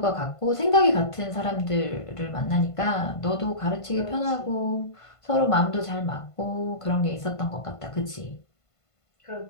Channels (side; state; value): right; late; 1.5 ms